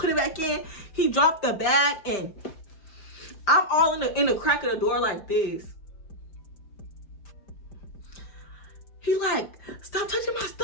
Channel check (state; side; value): late; right; 5.1 ms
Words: it back in. He dropped the bag and I'm all in the crack of the door like this. He like, stop touching my